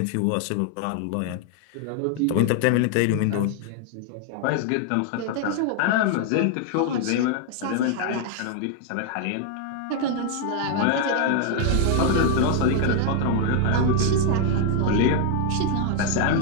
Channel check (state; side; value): different; both; correlation 0.00